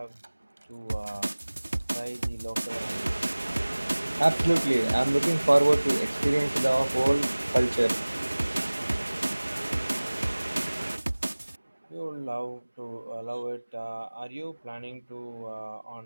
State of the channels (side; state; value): both; inverted; correlation -1.00